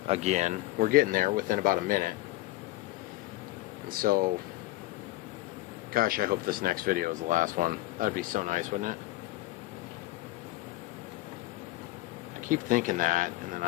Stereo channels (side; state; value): right; quieter; 17.7 dB